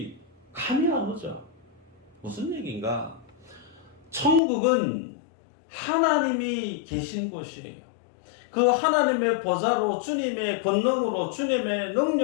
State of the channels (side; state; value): right; drops out; at 4.4 s